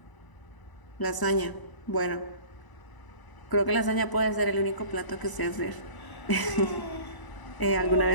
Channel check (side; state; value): right; late; 1.0 ms